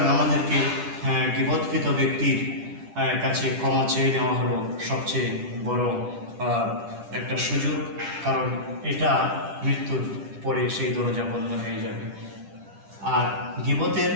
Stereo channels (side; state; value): left; late; 10 ms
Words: আমাদেরকে গীবতকৃত ব্যক্তির কাছে ক্ষমা চেয়ে নেওয়া হলো সবচেয়ে বড় একটা সুযোগ, কারণ এটা মৃত্যুর পরে সেই দরজা বন্ধ হয়ে যাবে। আর গীবতের